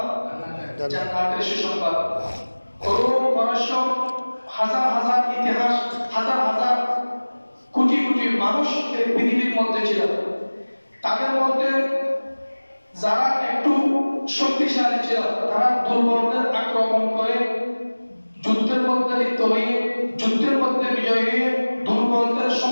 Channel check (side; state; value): both; inverted; correlation -1.00